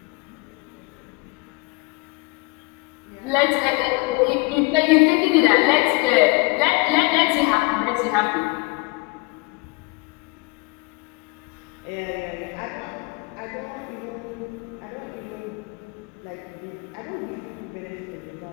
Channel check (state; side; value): quieter; right; 26.4 dB